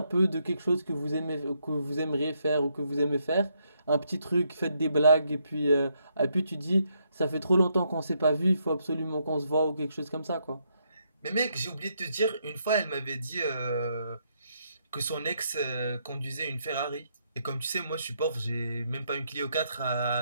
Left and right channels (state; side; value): inverted; both; correlation -0.76